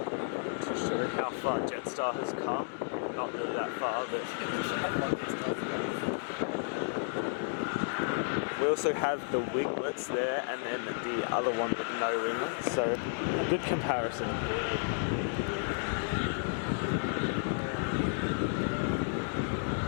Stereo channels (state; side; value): silent; right; digital silence